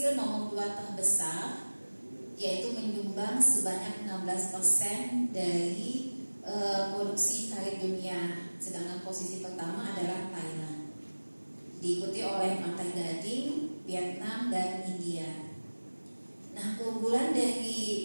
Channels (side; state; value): both; inverted; correlation -1.00